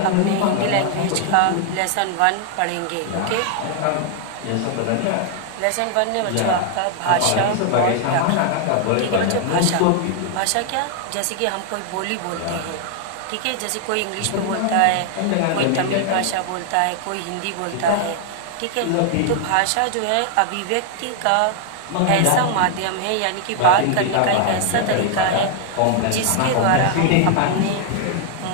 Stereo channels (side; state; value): both; different; correlation 0.00